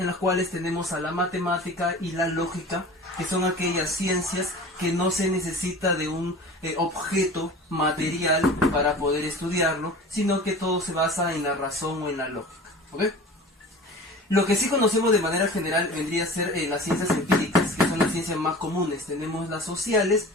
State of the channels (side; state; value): both; normal; correlation 0.39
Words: las cuales tenemos a la matemática y la lógica, que son aquellas ciencias que no se necesita de un objeto material para poder estudiarlo, sino que todo se basa en la razón o en la lógica, ¿ok? Lo que sí conocemos de manera general vendría a ser las ciencias empíricas, que son las ciencias más comunes. Tenemos las sociales